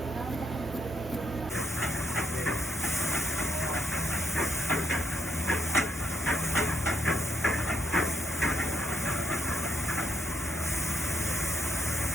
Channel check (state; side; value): normal; both; correlation 0.77